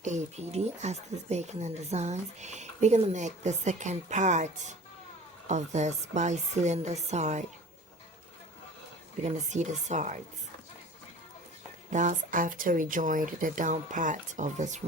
APD Aston's Bacon and Designs. We're gonna make the second part of this by sealing the side. We're gonna see the sides. That's after we joined the down part of this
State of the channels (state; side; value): normal; both; correlation 0.42